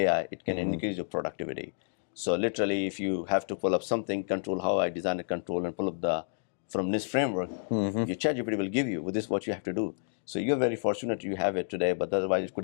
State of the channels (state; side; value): silent; right; digital silence